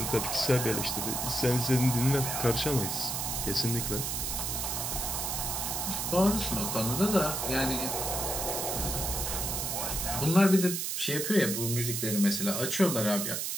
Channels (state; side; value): noise; right; hiss, 2 dB below the sound